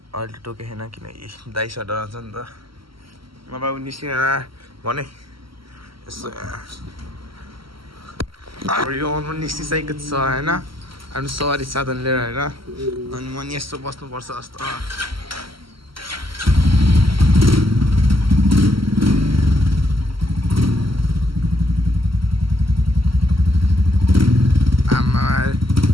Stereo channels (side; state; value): left; late; 0.74 ms